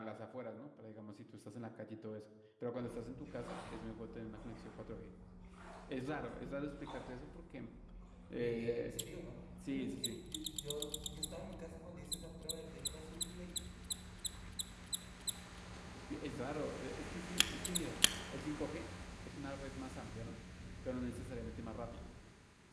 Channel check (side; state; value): both; identical; correlation 1.00